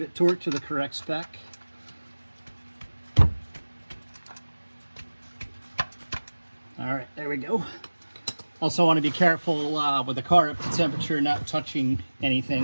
torqued to the correct spec. All right, there we go. Also want to be careful with the car up to temperature, not touching anything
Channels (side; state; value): both; inverted; correlation -1.00